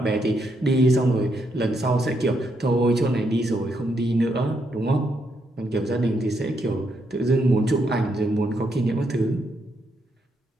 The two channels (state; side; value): normal; both; correlation 0.78